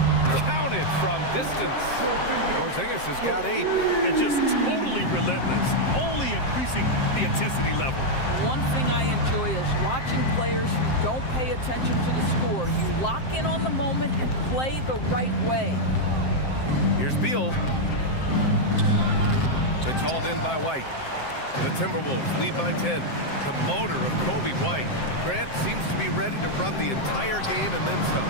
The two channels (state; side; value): late; right; 7.6 ms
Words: Counted from distance. Porzingis has got 8. And just totally relentless, only increasing the intensity level. One thing I enjoy is watching players who don't pay attention to the score. You lock in on the moment and play the right way. Here's Beal. It's hauled in by White. The Timberwolves lead by 10. The motor of Kobe White. Grant seems to be ready to run the entire game and then some.